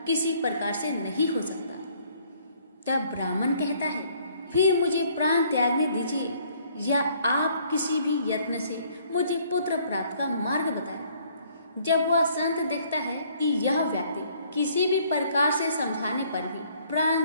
किसी प्रकार से नहीं हो सकता। तब ब्राह्मण कहता है, फिर मुझे प्राण त्यागने दीजिए या आप किसी भी यत्न से मुझे पुत्र प्राप्त का मार्ग बताएं। जब वह संत देखता है कि यह व्यक्ति किसी भी प्रकार से समझाने पर भी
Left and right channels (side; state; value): both; inverted; correlation -0.62